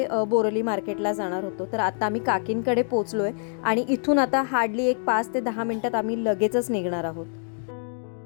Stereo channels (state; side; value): silent; right; 61 dB below the other